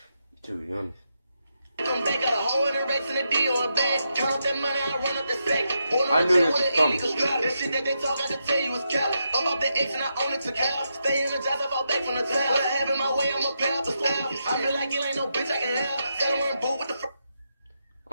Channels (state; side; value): inverted; both; correlation -0.84